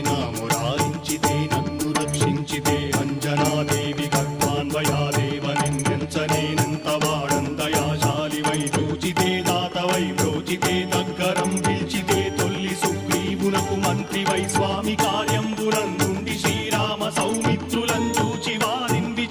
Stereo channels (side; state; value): both; identical; correlation 1.00